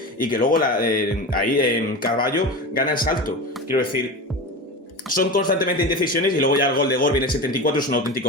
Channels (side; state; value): both; normal; correlation 0.27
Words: y que luego ahí en Carballo gana el salto. Quiero decir, son constantemente indecisiones, y luego ya el gol de Gorbi en el 74 es un